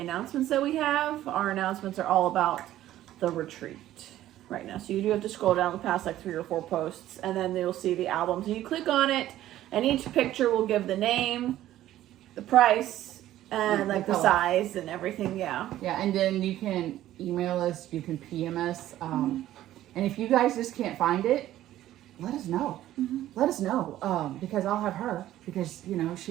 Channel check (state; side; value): quieter; left; 13.6 dB